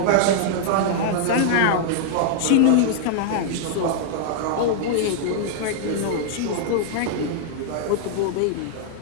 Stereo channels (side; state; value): both; different; correlation -0.01